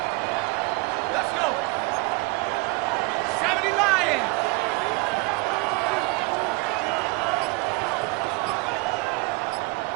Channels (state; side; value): quieter; left; 26.4 dB